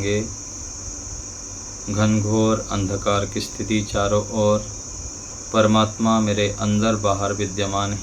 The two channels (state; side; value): identical; both; correlation 1.00